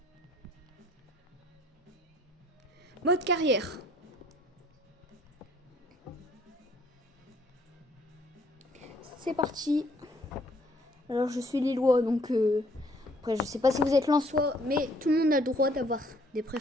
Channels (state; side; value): normal; both; correlation 0.62